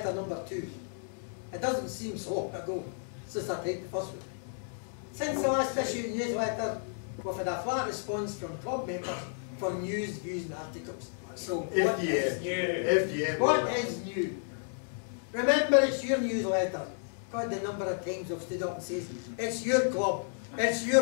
number 2. It doesn't seem so long ago since I typed the first one. Since the last issue of newsletter, we've had a flat response from club members for news, views and articles. So what is new? What is new? Remember, it's your newsletter. God, the number of times I've stood up and says, it's your club, it's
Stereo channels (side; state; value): right; silent; digital silence